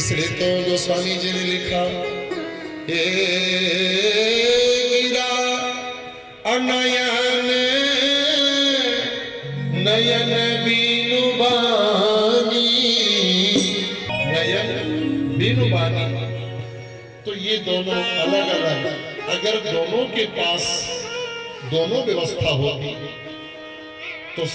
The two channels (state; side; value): identical; both; correlation 1.00